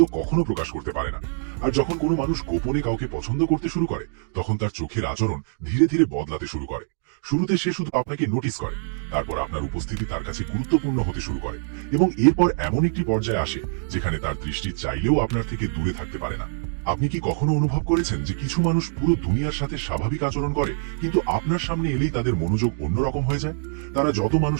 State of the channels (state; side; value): silent; left; digital silence